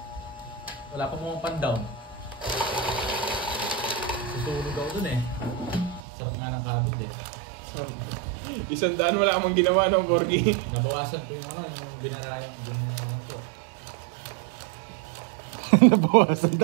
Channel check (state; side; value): drops out; left; at 6.0 s